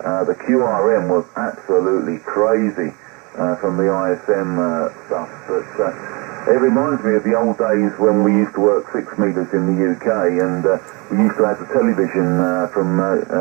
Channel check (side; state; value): left; quieter; 29.0 dB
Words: the QRM was absolutely crazy from the ISM stuff. But it reminds me of the old days when we used to work 6 meters in the UK, and we used to have the television from